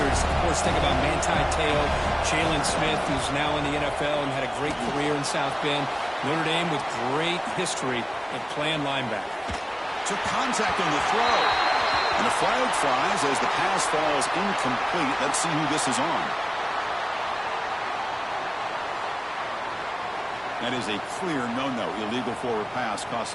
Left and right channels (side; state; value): both; identical; correlation 1.00